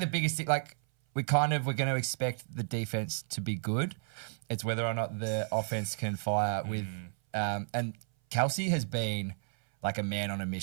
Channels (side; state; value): left; silent; 56 dB below the other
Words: biggest thing, we're going to expect the defense to be good. It's whether or not the offense can fire with. And Kelsey has been like a man on a